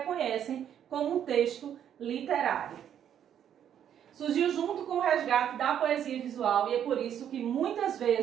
como um texto literário. Surgiu junto com o resgate da poesia visual e é por isso que muitas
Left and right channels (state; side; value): quieter; left; 9.6 dB